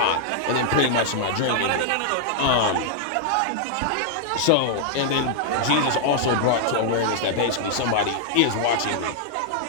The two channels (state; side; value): different; both; correlation -0.01